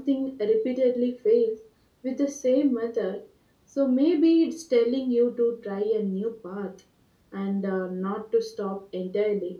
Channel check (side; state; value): both; identical; correlation 1.00